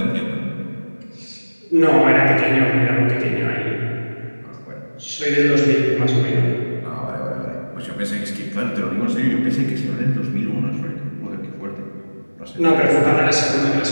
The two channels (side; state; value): both; inverted; correlation -1.00